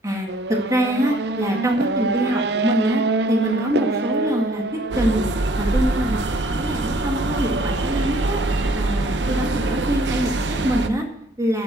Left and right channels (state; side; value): normal; both; correlation 0.60